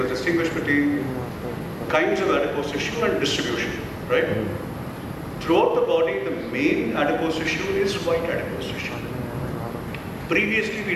distinguish between kinds of adipose tissue and distribution, right? Throughout the body, the main adipose tissue is white adipose tissue. Previously, we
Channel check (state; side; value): identical; both; correlation 1.00